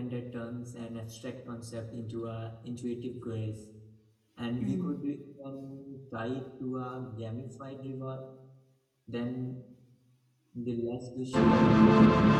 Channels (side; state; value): both; identical; correlation 1.00